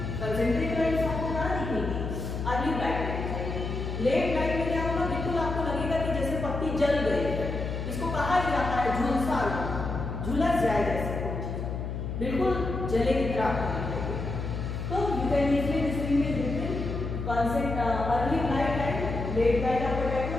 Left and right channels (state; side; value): noise; left; hum, 4 dB below the sound